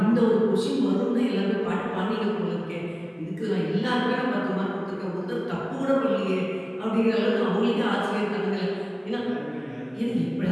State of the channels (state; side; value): identical; both; correlation 1.00